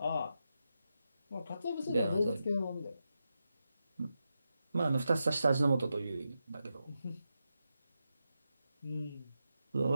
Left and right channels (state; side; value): inverted; both; correlation -0.88